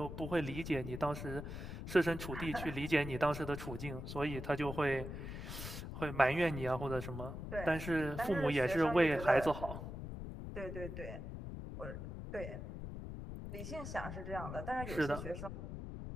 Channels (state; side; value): noise; left; rumble, 7 dB below the sound